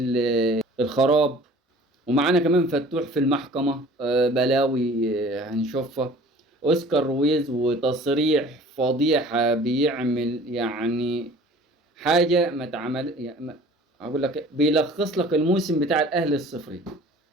الخراب. ومعانا كمان فتوح في المحكمة، بلاوي هنشوفها. اوسكار رويز وتصريح فضيحة بيعمل يعني حاجه ما تعمل يعني اقول لك بيلخص لك الموسم بتاع الاهلي الصفري،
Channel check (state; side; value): normal; both; correlation 0.47